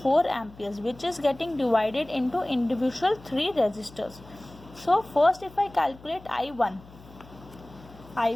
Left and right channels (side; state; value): left; noise; hum, 21 dB below the sound